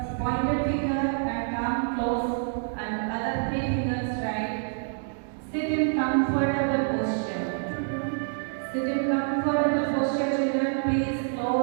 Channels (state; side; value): silent; left; digital silence